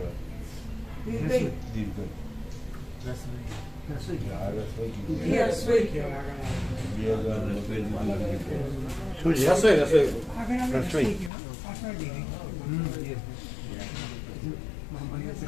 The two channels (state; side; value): drops out; right; at 11.3 s